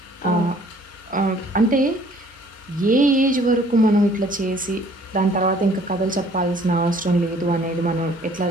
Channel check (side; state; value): both; normal; correlation 0.57